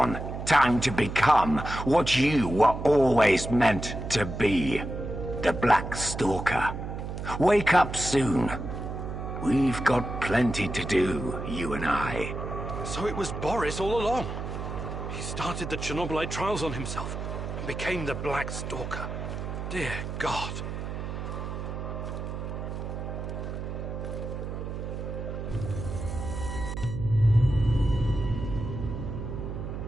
Time to become what you were always meant to be. The Black Stalker. Wake up soon. We've got plenty to do, you and I. So it was Boris all along. He started the Chernobylite trials on himself and became the Black Stalker. Dear God.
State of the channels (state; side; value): noise; right; hum, 6 dB below the sound